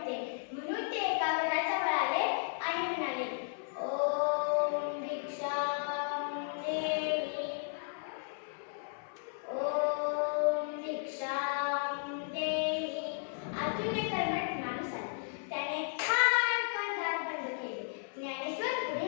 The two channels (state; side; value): silent; right; 55 dB below the other